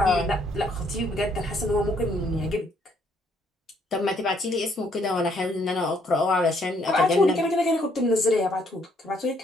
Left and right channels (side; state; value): both; normal; correlation 0.69